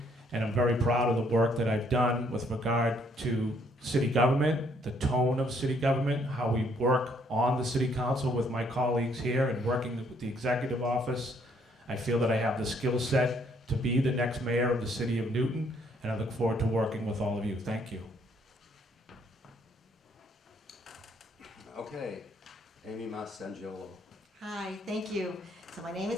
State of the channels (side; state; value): both; normal; correlation 0.67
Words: and I'm very proud of the work that I've done with regard to city government, the tone of city government, how we work on the city council with my colleagues here and working with the executive office. I feel that I have the skill set to be the next mayor of the city of Newton, and I look forward to working with all of you. Thank you. Okay, Amy Mah Sangiolo. Hi, thank you. So my name